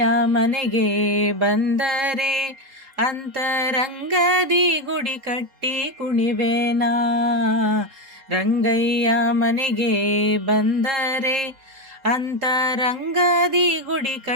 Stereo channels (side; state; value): left; late; 3.7 ms